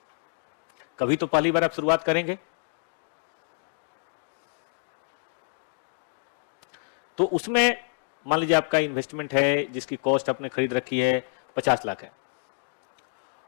कभी तो पहली बार आप शुरुआत करेंगे, तो उसमें मान लीजिए आपका इन्वेस्टमेंट है जिसकी कॉस्ट आपने खरीद रखी है 50 लाख है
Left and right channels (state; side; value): silent; right; digital silence